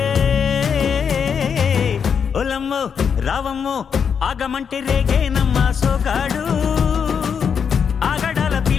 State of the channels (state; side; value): quieter; right; 6.9 dB